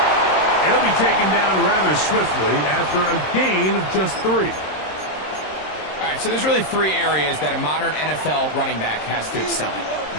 He'll be taken down rather swiftly after a gain of just 3. All right, so there's really 3 areas that a modern NFL running back has to excel at.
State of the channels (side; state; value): right; late; 26 ms